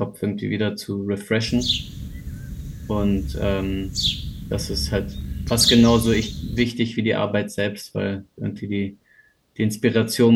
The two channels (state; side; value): identical; both; correlation 1.00